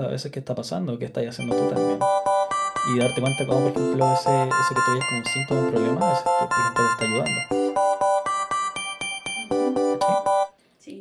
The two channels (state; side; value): identical; both; correlation 1.00